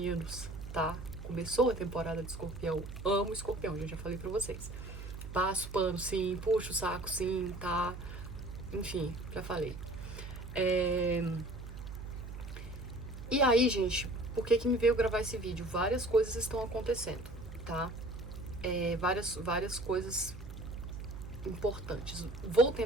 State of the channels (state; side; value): noise; right; hum, 10 dB below the sound